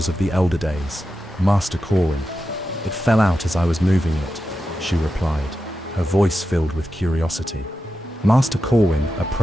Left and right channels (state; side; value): normal; both; correlation 0.90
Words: of the Elder Days, Master Corwin. It fell out as I was moving it," she replied, her voice filled with curiosity. Master Corwin